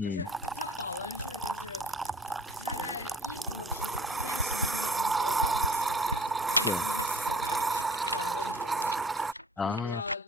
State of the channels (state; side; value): normal; both; correlation 0.48